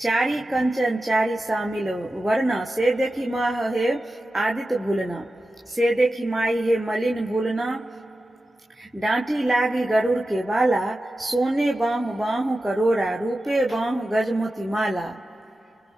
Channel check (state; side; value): normal; both; correlation 0.93